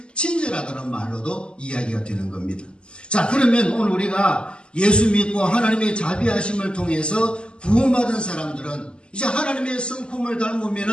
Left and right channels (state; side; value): late; right; 0.050 ms